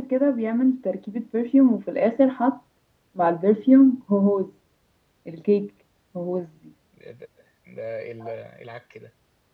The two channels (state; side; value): identical; both; correlation 1.00